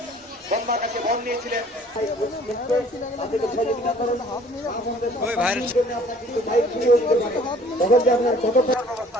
ব্রহ্মার কাছে বর নিয়েছিলেন।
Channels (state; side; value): normal; both; correlation 0.54